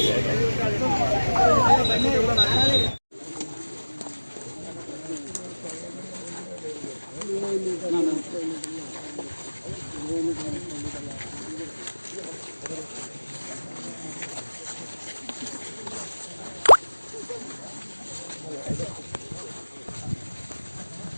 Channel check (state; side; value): inverted; both; correlation -1.00